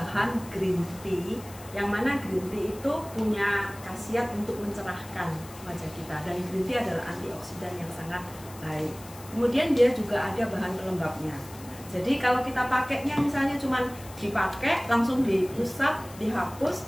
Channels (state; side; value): noise; left; hiss, 19 dB below the sound